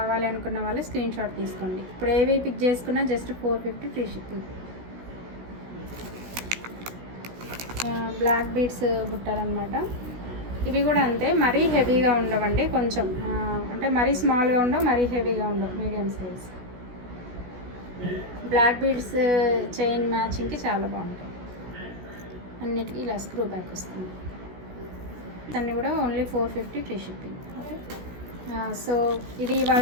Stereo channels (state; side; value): late; left; 16 ms